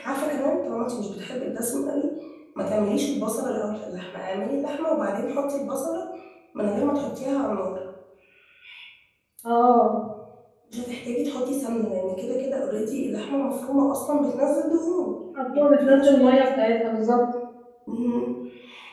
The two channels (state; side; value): identical; both; correlation 1.00